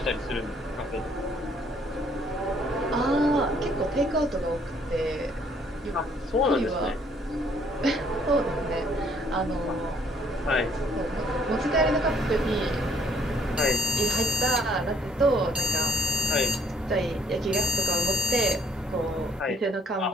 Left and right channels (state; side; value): normal; both; correlation 0.63